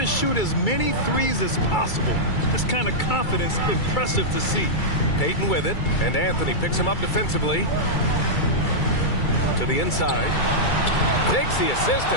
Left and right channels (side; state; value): right; late; 2.3 ms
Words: shoot as many threes as possible. This kind of confidence, impressive to see. Payton with it, and Anthony picks him up defensively. To the inside. Takes the assist